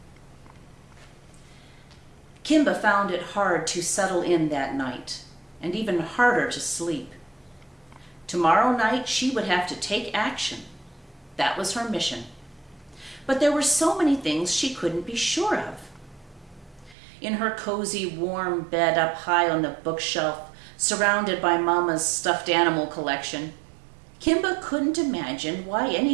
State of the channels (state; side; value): drops out; left; at 16.9 s